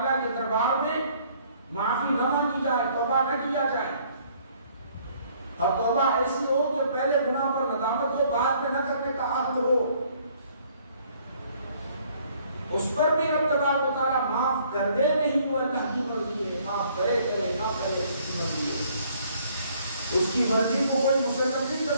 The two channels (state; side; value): inverted; both; correlation -0.62